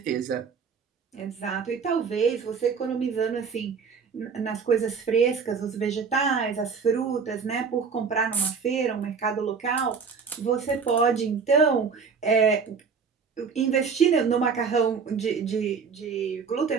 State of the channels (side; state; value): left; quieter; 5.7 dB